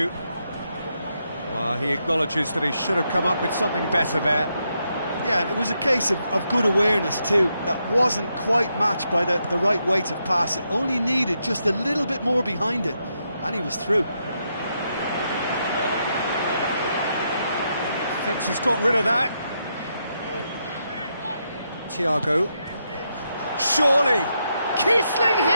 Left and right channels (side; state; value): both; inverted; correlation -0.81